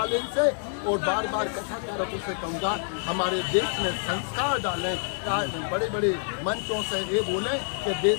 से और बार बार कथाकारकों से कहूँगा, हमारे देश में संस्कार डालें। बड़े बड़े मंचों से ये बोले कि देश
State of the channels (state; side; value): silent; right; 58 dB below the other